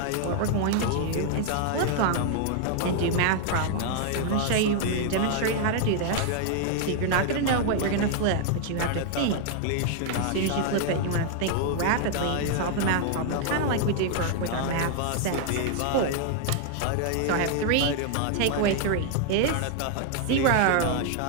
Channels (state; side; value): different; both; correlation 0.00